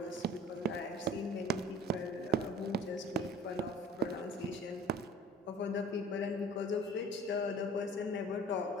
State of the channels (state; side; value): normal; both; correlation 0.46